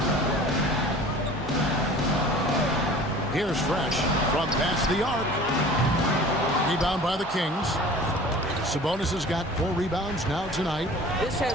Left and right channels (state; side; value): normal; both; correlation 0.44